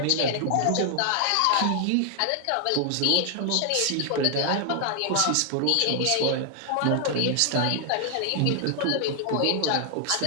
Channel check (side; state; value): both; different; correlation 0.00